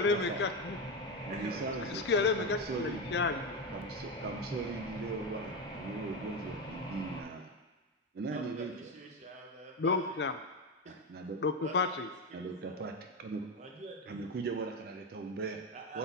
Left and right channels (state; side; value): normal; both; correlation 0.14